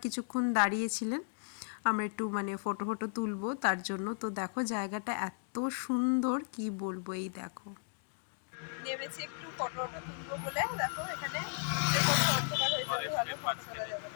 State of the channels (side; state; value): right; silent; digital silence